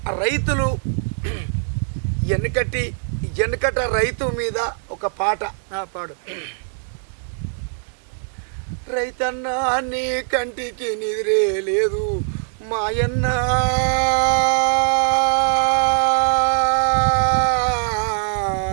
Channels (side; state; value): left; silent; digital silence